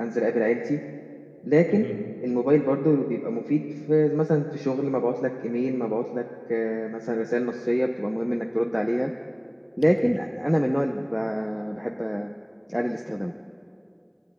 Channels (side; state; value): both; identical; correlation 1.00